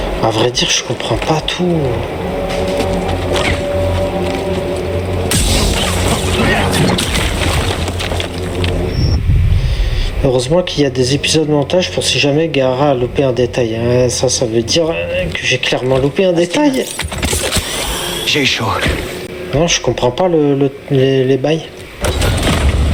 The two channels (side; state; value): both; identical; correlation 1.00